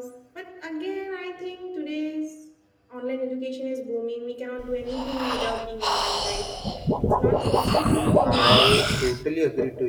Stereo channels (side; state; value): both; identical; correlation 1.00